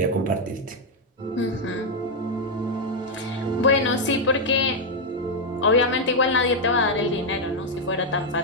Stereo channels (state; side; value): normal; both; correlation 0.00